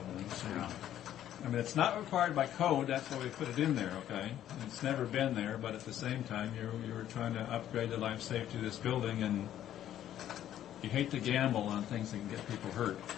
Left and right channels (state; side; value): quieter; right; 11.5 dB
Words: So, I mean, it's not required by code. That's why we put it in there. Okay, it's never been there, but at the same time, you were trying to upgrade the life safety of this building, and you hate to gamble on things that can get people hurt.